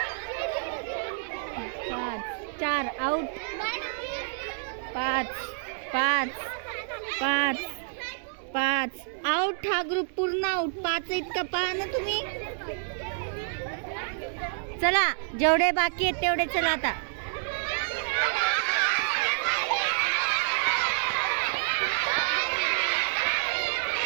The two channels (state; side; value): silent; left; digital silence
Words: 4 out. 5 out. हा ग्रुप पूर्ण आउट. 5 इतका पहा ना तुम्ही. चला जेवढे बाकी आहेत तेवढे चला आता.